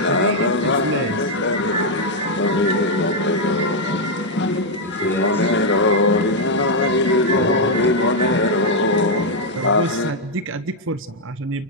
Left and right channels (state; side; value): normal; both; correlation 0.00